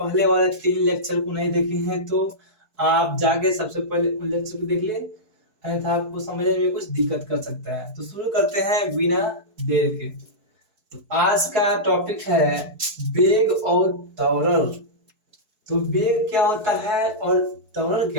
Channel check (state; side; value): late; left; 4.7 ms